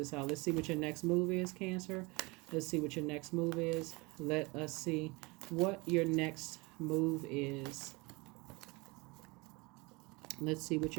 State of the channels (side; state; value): left; quieter; 25.9 dB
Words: out. Let's see what your next move is, Cancer. Let's see what your next move is. Let us see what your next move is. Let's see what